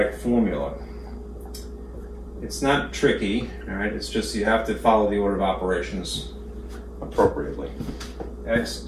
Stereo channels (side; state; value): both; identical; correlation 1.00